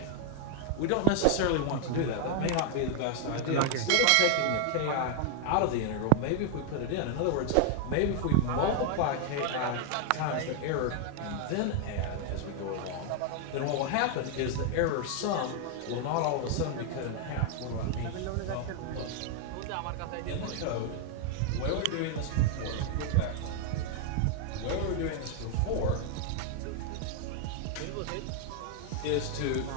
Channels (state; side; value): different; both; correlation 0.00